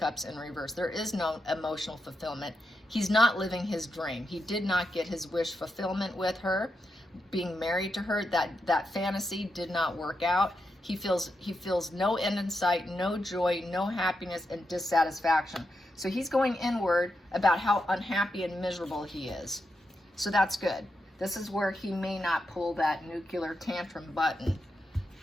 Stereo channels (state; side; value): normal; both; correlation 0.86